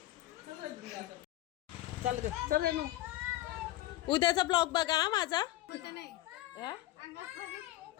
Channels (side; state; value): right; quieter; 15.7 dB